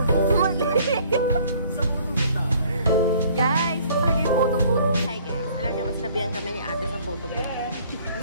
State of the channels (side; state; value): both; inverted; correlation -0.57